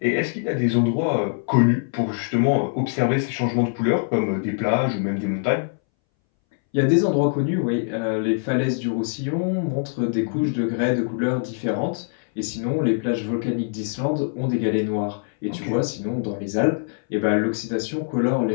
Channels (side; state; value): right; silent; 62 dB below the other